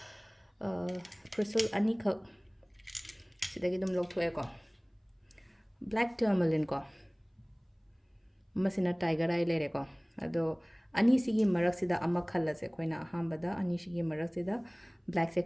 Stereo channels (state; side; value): identical; both; correlation 1.00